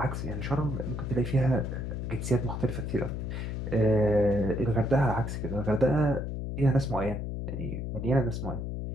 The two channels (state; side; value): noise; left; hum, 4 dB below the sound